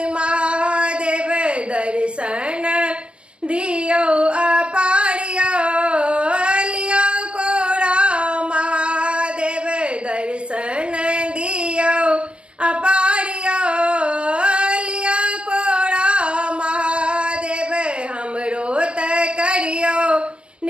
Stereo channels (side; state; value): left; late; 0.058 ms